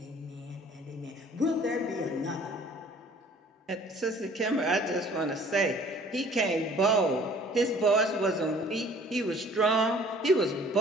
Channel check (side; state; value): both; normal; correlation 0.53